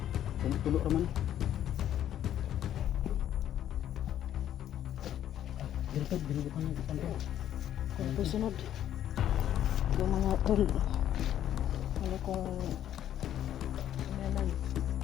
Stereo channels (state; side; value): quieter; right; 11.1 dB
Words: Tulo raman. Dito pa ng kanto. Tapos sunod. Yung mga tol. Ano kung naman.